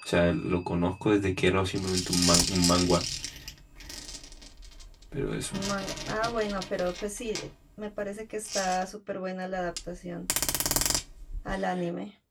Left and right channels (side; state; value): both; identical; correlation 1.00